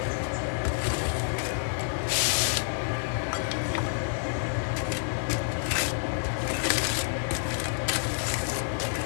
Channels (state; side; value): silent; right; digital silence